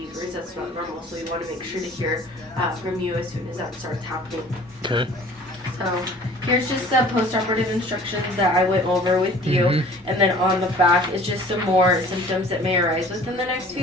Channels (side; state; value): both; normal; correlation 0.48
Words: that's not normal. So we want to make sure to hear from you as soon as that starts happening. Okay. So here's just the post-operative instructions that I went over with you. Mm-hmm. And then on the back is just some more symptoms that may arise within the next